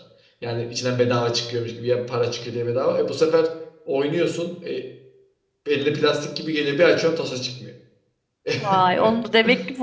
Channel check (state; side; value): identical; both; correlation 1.00